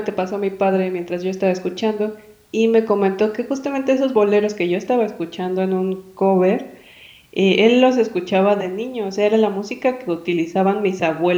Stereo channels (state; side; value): identical; both; correlation 1.00